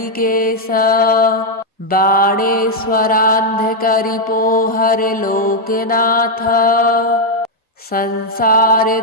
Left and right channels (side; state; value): both; normal; correlation 0.00